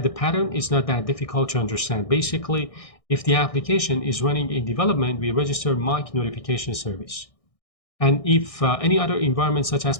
the pattern. It's not that difficult to understand. Basically, if the application is running in development, we register mock notification service. And if any other environment such as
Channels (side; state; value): right; late; 1.6 ms